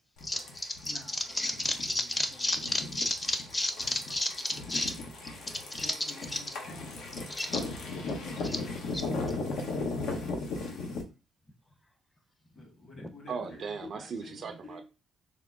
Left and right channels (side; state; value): both; normal; correlation 0.80